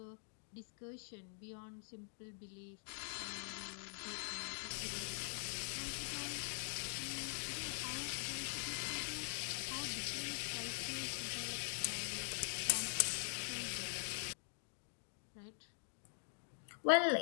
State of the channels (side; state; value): right; silent; digital silence